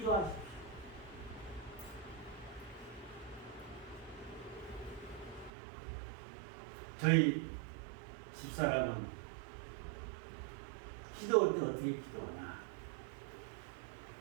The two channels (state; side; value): drops out; left; at 5.5 s